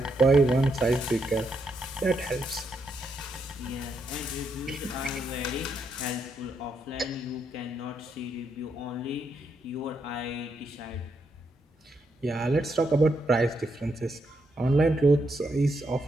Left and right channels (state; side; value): normal; both; correlation 0.79